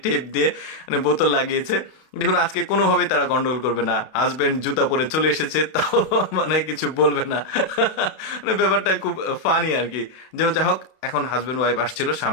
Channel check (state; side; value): late; right; 32 ms